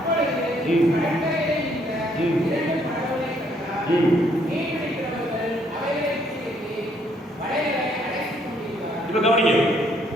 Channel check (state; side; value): normal; both; correlation 0.68